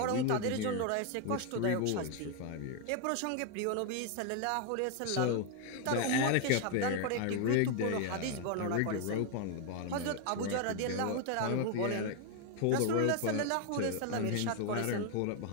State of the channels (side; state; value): both; different; correlation 0.01